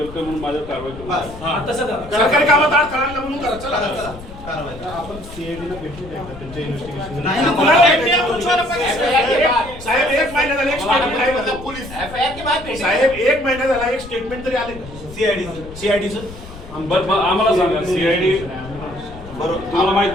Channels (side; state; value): left; noise; rumble, 15 dB below the sound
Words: म्हणून माझ्यावर कारवाई करू. सरकारी कामात अडथळा आणला म्हणून करा. चला आपण सीआयडीला भेटू द्या त्यांच्या इन्व्हेस्टिगेशन. साहेब एक महिना झाला एक स्टेटमेंट आहे पोलीस साहेब, एक महिना झाला एक स्टेटमेंट तरी आले सीआयडीचं. आम्हाला सांगा सीआयडी तुम्हाला माहित